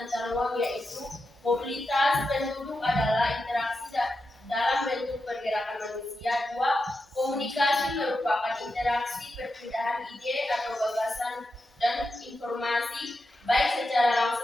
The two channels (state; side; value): normal; both; correlation 0.88